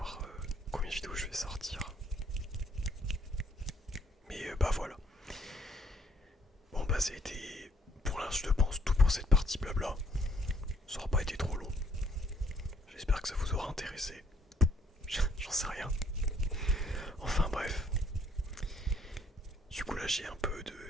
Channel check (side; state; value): both; normal; correlation 0.65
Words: combien de vidéos je vais sortir. Mais voilà. Bon ça a été pour l'instant je pense tout pour cette partie blabla. Ça aura pas été trop long. J'espère que ça vous aura intéressé. J'en sais rien. Enfin bref. Du coup là j'ai